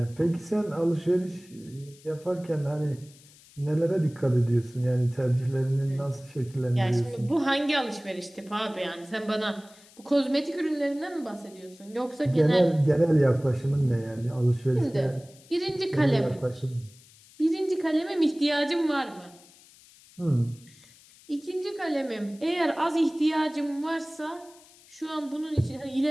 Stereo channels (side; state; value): left; noise; hiss, 25 dB below the sound